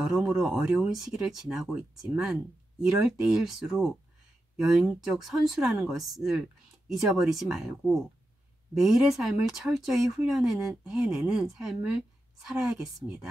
어려운 시기를 지나고 있지만 이럴 때일수록 영적 선수라는 것을 잊어버리지 말고 매일의 삶을 철저히 해내는 삶을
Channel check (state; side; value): normal; both; correlation 0.89